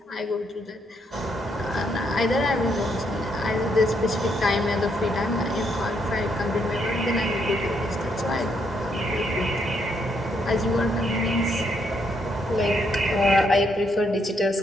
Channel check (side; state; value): both; normal; correlation 0.75